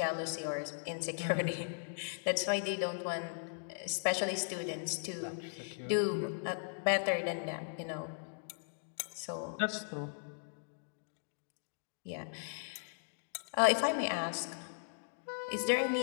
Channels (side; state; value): right; silent; digital silence